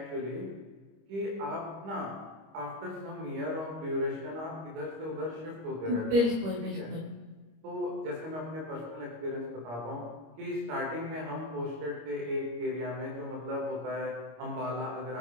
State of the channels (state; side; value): late; left; 25 ms